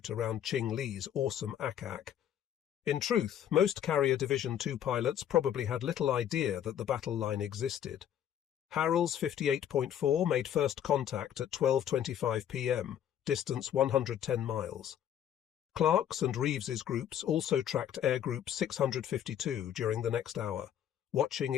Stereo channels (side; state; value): right; quieter; 10.1 dB